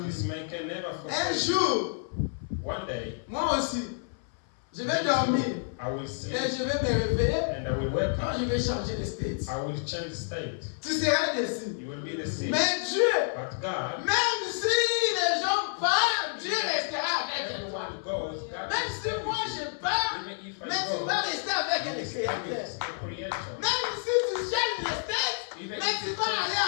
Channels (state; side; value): silent; right; 58 dB below the other